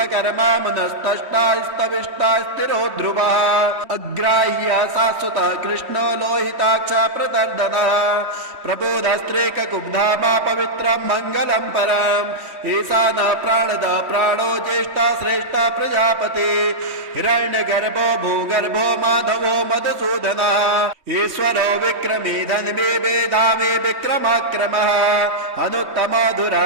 मुनस्तष्टा स्तविष्टा स्थिरो ध्रुवः अग्राह्य शाश्वतः कृष्णो लोहिताक्ष प्रदर्दनः प्रबोधस्त्रीककुब्धामा पवित्रं मङ्गलं परम् ईशानः प्राणदः प्राणो ज्येष्ठा श्रेष्ठा प्रजापति हिरण्यगर्भो भूगर्भो माधवो मधुसूदनः ईश्वरो विक्रमी धन्वी वेधामी विक्रमाक्रमः अनुत्तमो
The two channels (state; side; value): late; left; 3.2 ms